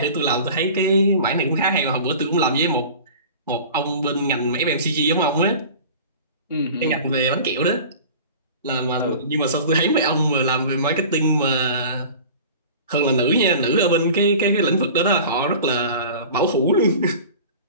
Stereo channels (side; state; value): both; inverted; correlation -0.40